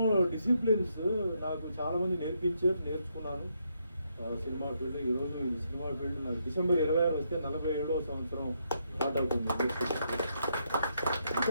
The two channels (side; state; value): both; inverted; correlation -0.77